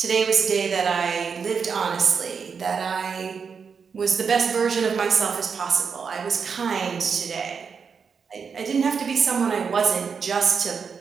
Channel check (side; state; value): left; quieter; 6.0 dB